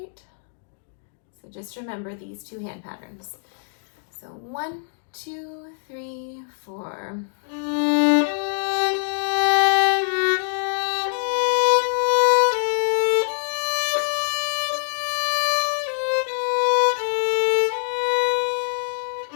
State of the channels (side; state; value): right; silent; digital silence